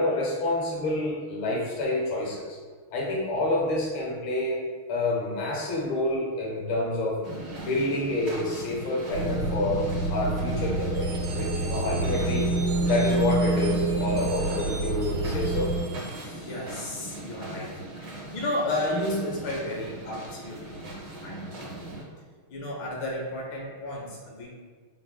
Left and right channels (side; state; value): right; late; 6.3 ms